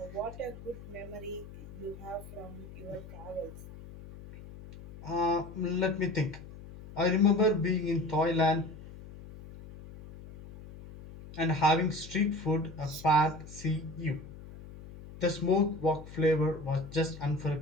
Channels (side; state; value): left; noise; hum, 15 dB below the sound